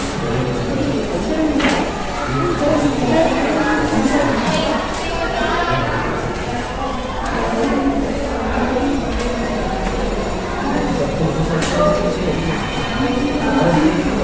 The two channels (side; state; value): both; identical; correlation 1.00